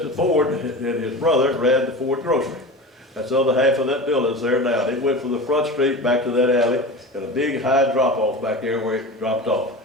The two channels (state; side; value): normal; both; correlation 0.30